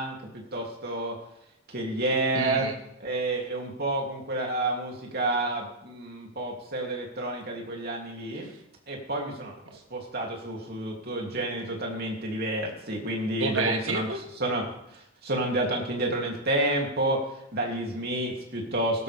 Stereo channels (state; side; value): normal; both; correlation -0.03